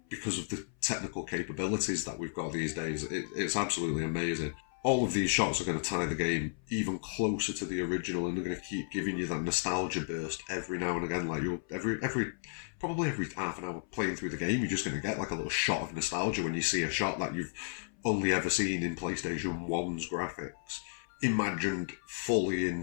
because of the technical capabilities that we've got these days, it's absolutely amazing. All of these shots are going to tie the game even closer to the original, and they're going to keep giving you that nostalgia burst every now and again. Like, you'll probably every half an hour playing through the game, you're just going to get like a little shot of nostalgia when you see a shot that you've only ever seen in PlayStation 1's graphics, imagined fully in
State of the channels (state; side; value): silent; right; 56 dB below the other